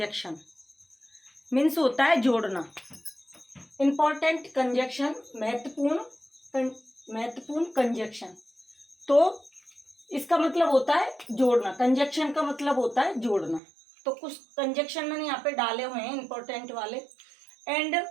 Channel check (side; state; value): left; drops out; at 13.6 s